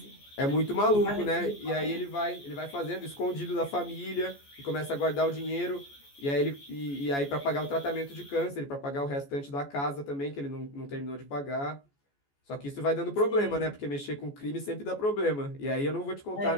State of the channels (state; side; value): late; right; 14 ms